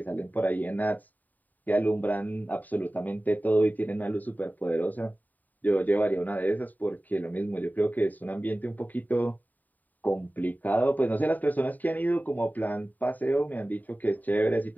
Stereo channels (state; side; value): late; right; 0.084 ms